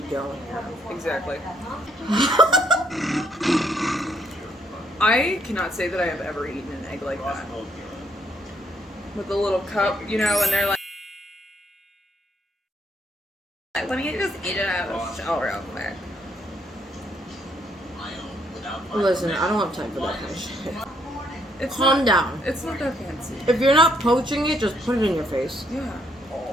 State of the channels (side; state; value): both; normal; correlation 0.71